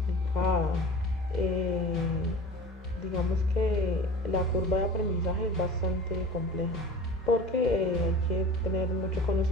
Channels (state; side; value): normal; both; correlation 0.38